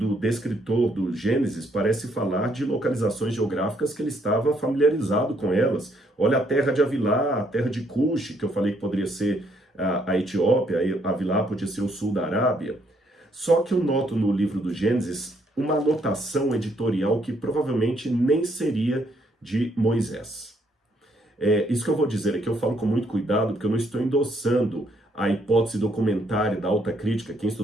descritor do Gênesis parece falar de localizações geográficas que ele estava familiarizado com elas. Olha a terra de Avilá, a terra de Cush, que eu falei que poderia ser a Etiópia, Avilá podia ser o sul da Arábia. Só que eu noto no livro do Gênesis uma anotação editorial que provavelmente nem seria de Moisés. Isso que eu vou dizer aqui, eu falo com muito cuidado, porque eu não estou endossando a hipótese documentária da alta crítica. Quem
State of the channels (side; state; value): both; normal; correlation 0.70